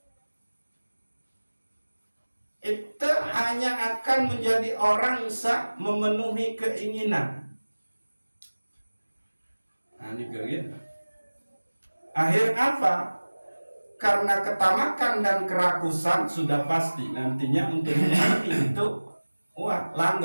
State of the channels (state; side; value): inverted; both; correlation -1.00